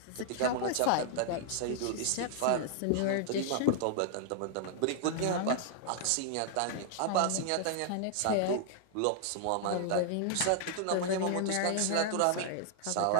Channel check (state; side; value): different; both; correlation 0.00